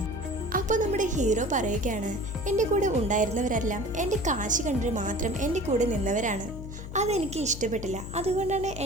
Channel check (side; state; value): left; noise; hum, 10 dB below the sound